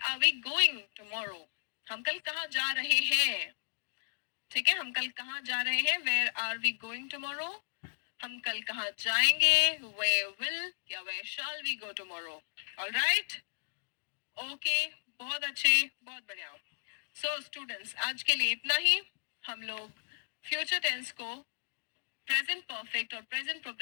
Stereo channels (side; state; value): right; silent; digital silence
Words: we going tomorrow? हम कल कहाँ जा रहे हैं? ठीक है, हम कल कहाँ जा रहे हैं? Where are we going tomorrow. हम कल कहाँ जाएंगे? वेयर विल या where shall we go tomorrow. Alright, okay, बहुत अच्छे, बहुत बढ़िया. सो स्टूडेंट्स, आज के लिए इतना ही. हम लोग फ्यूचर टेंस को, प्रेजेंट परफेक्ट और प्रेजेंट